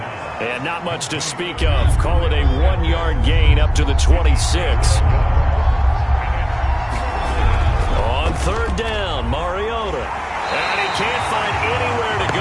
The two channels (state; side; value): identical; both; correlation 1.00